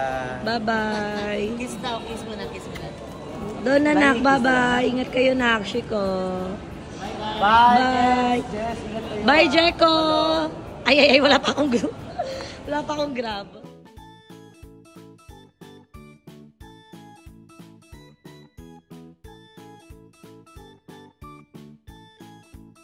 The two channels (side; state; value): both; identical; correlation 1.00